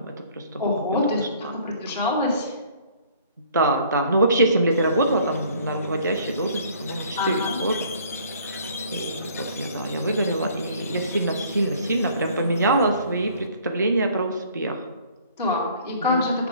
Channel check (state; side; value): inverted; both; correlation -0.56